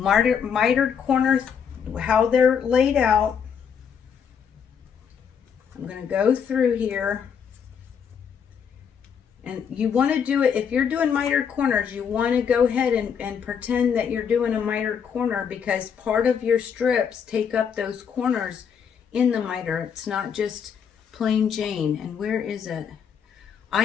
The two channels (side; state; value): right; quieter; 7.3 dB